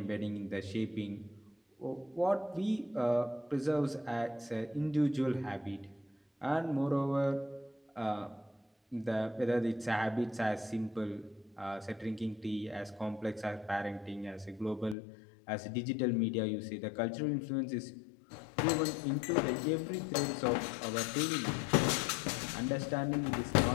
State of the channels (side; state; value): right; drops out; at 15.0 s